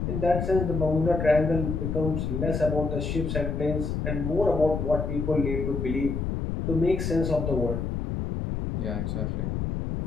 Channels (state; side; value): noise; left; rumble, 2 dB below the sound